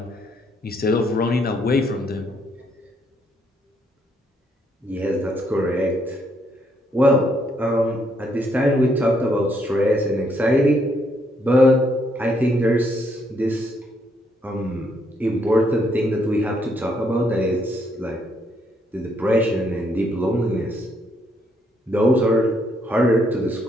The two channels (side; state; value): both; normal; correlation 0.73